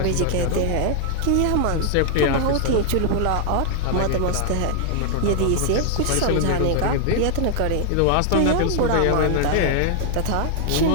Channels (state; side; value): different; both; correlation 0.00